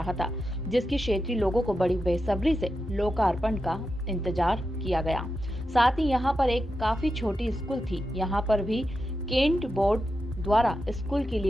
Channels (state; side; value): normal; both; correlation 0.89